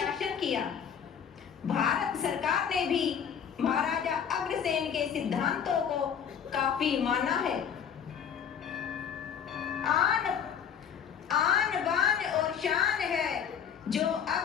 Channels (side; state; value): right; quieter; 8.0 dB